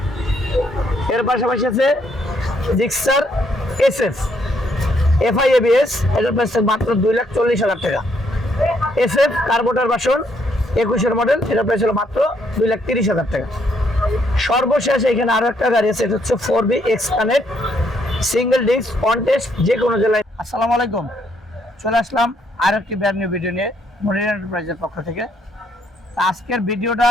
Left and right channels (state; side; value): normal; both; correlation 0.72